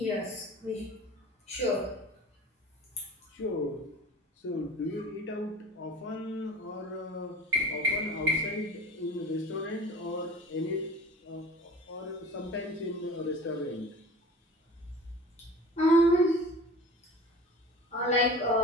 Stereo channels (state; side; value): normal; both; correlation 0.40